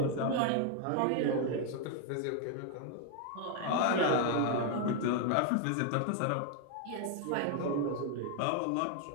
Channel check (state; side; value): different; both; correlation 0.00